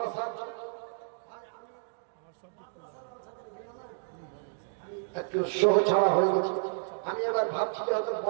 জন্য। একটু শো ছাড়া হয়ে গেছে। আমি এবার ভাবছি যে হয়তো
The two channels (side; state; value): left; silent; digital silence